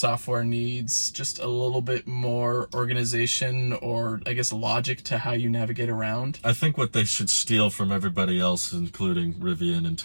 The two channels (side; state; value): both; inverted; correlation -1.00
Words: needs just a little bit more organization, or I guess logic to how you navigate around. I think what they should steal from everybody else, and including Rivian and